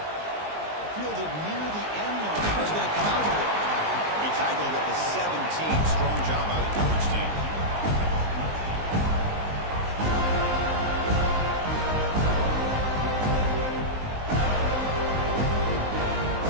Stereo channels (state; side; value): late; left; 19 ms